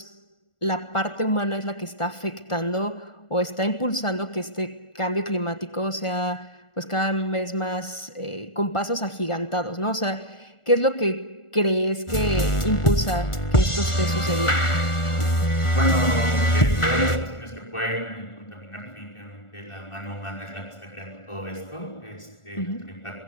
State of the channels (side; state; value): right; late; 1.4 ms